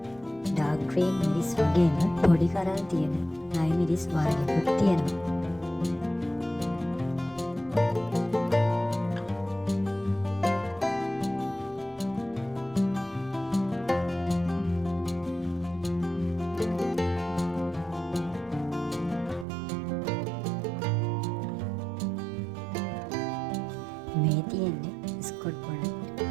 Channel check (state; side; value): drops out; left; at 19.5 s